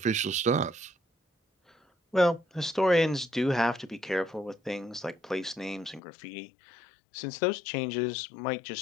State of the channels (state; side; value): drops out; right; at 6.0 s